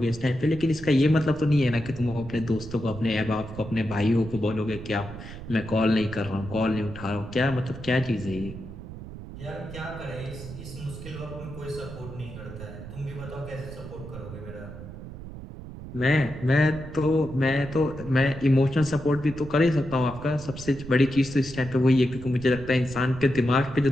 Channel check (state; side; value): noise; right; rumble, 12 dB below the sound